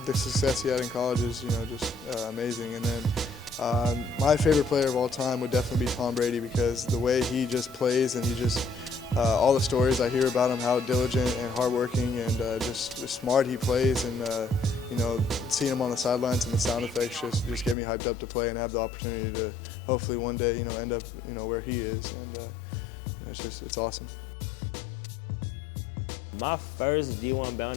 success he had in college is just amazing. And then my favorite player of all time would definitely be Tom Brady, because the way he just plays, and he just all the stories I hear about him, how diligent and hardworking and just smart he plays, and seeing him on the sidelines and the sound effects just get me hyped up to play and have the opportunity to hopefully one day end up where he is, and it's awesome. My first D1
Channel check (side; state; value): right; drops out; at 17.8 s